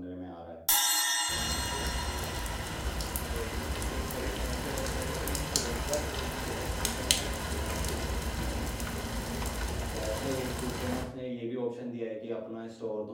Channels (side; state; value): both; identical; correlation 1.00